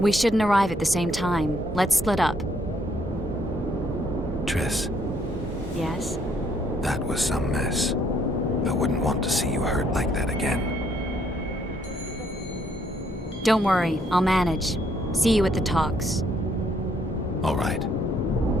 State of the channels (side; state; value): both; normal; correlation 0.68